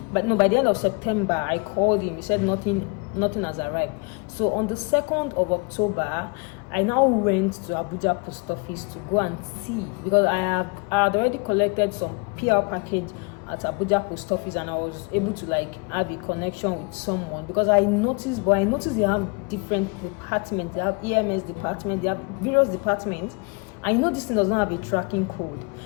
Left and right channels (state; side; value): quieter; right; 31.7 dB